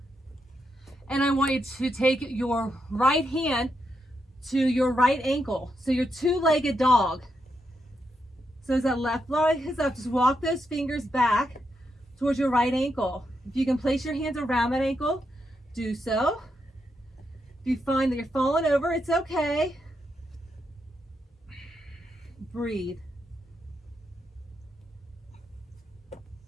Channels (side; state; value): both; normal; correlation 0.82